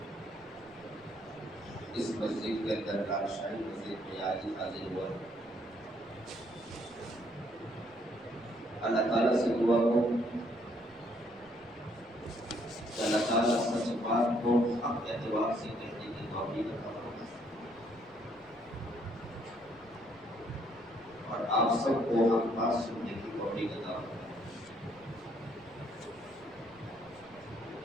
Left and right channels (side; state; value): right; noise; rumble, 29 dB below the sound